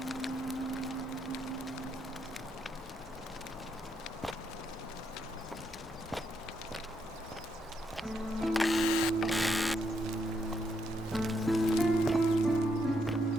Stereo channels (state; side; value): normal; both; correlation 0.77